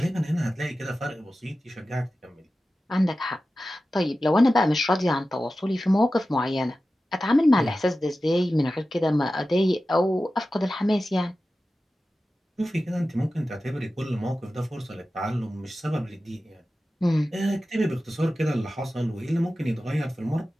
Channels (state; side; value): normal; both; correlation 0.94